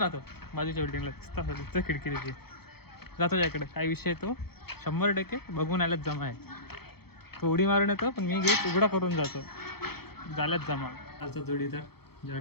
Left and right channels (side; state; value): right; late; 0.96 ms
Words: राहतो बाजूच्या बिल्डिंगला. तिथं खिडकी त्याची जातो त्याकडे. काय विषय तो 100% बघून आल्याच जमा आहे. तो उडी मारून येतो पण मी गेट उघडा करून जातो. झाल्याच जमा. आजचा जोडीदार